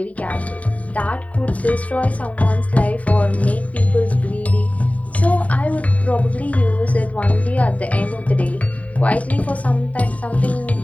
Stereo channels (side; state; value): right; late; 0.069 ms